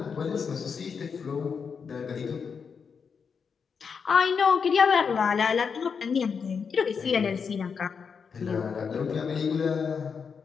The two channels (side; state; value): right; quieter; 6.1 dB